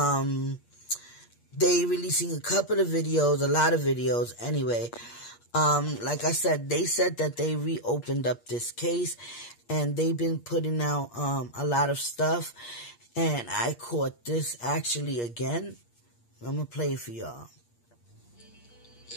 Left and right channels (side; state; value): right; late; 8.5 ms